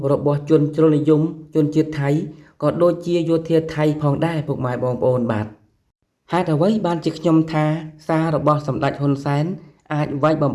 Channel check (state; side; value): identical; both; correlation 1.00